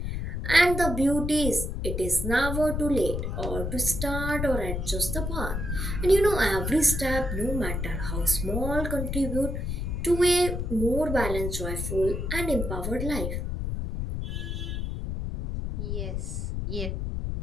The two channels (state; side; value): noise; left; rumble, 3 dB below the sound